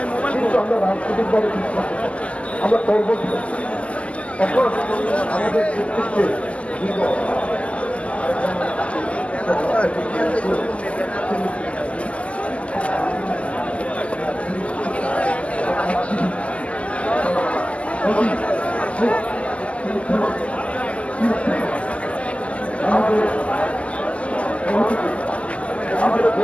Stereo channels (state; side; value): late; right; 0.062 ms